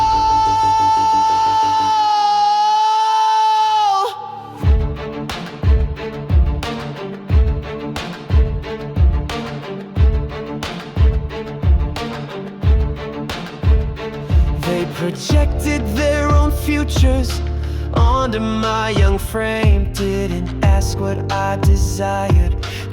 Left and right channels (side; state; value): both; identical; correlation 1.00